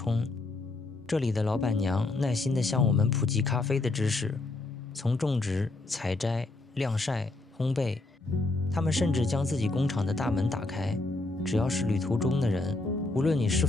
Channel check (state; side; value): quieter; right; 3.0 dB